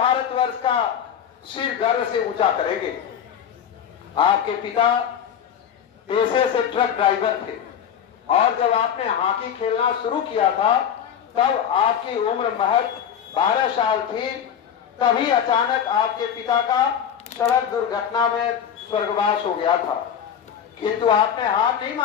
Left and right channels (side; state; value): right; quieter; 8.6 dB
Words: का सिर गर्व से ऊंचा करेंगे। आपके पिता पेशे से ट्रक ड्राइवर थे और जब आपने हॉकी खेलना शुरू किया था तब आपकी उम्र महज 12 साल थी। तभी अचानक आपके पिता का सड़क दुर्घटना में स्वर्गवास हो गया था, किंतु आपने हार नहीं